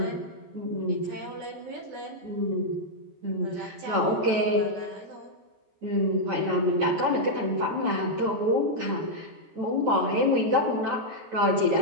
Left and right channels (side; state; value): left; late; 14 ms